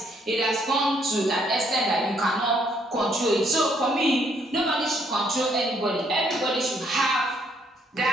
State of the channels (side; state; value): both; normal; correlation 0.69